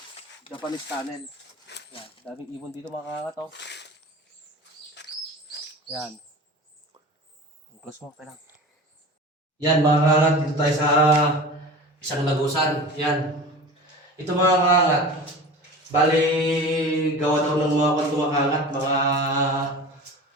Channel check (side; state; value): both; normal; correlation 0.35